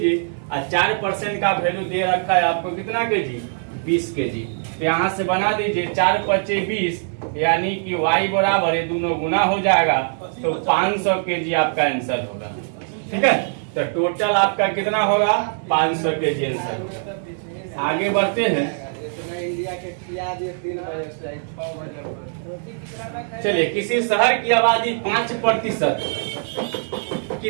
और 4% का वैल्यू दे रखा है आपको कितना के जी, 20 के जी। तो यहाँ से बना दीजिए 4 × 20, यानी कि y बराबर, ये दोनों गुना हो जाएगा, तो 500 के जी आपका आंसर होगा। ठीक है। तो टोटल आपका कितना होगा 500 के जी आंसर। आगे बढ़ते हैं। चलिए, किसी शहर की आबादी 5% की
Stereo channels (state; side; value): silent; left; digital silence